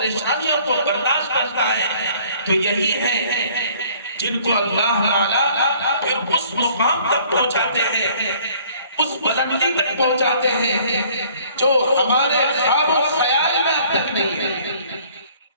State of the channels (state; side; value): inverted; both; correlation -0.57